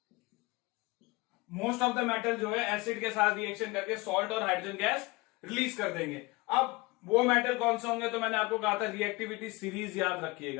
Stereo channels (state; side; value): quieter; right; 23.6 dB